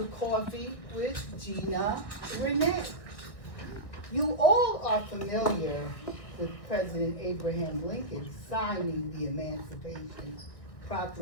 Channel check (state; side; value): late; right; 1.4 ms